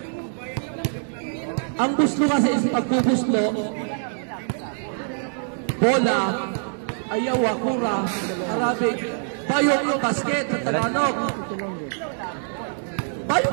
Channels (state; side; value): silent; left; digital silence